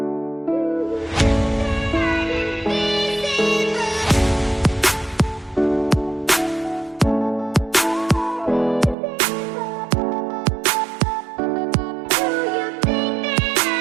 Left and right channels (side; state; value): left; drops out; at 9.0 s